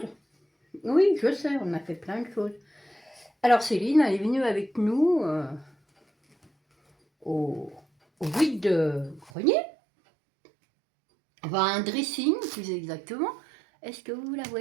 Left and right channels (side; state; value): left; drops out; at 9.3 s